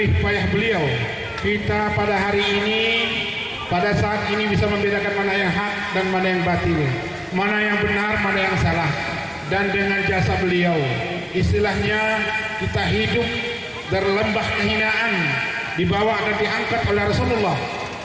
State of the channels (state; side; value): identical; both; correlation 1.00